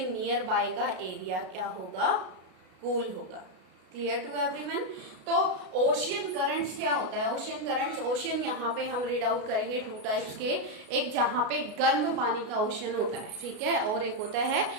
नियर बाय का एरिया क्या होगा, कूल होगा. Clear to everyone. तो ओशियन करंट्स क्या होता है, ओशियन करंट्स, ओशियन यहाँ पे हम रीड आउट करेंगे टू टाइप्स के. एक जहाँ पे गर्म पानी का ओशियन होता है, ठीक है, और एक होता है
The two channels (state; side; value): late; left; 33 ms